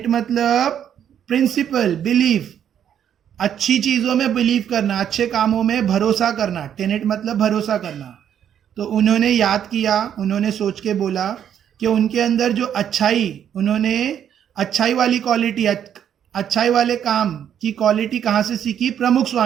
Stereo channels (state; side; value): quieter; left; 9.4 dB